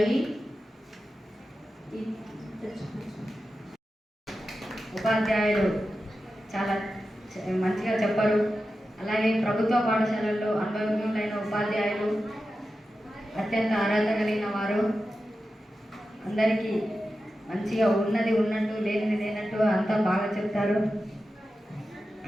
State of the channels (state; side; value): normal; both; correlation 0.92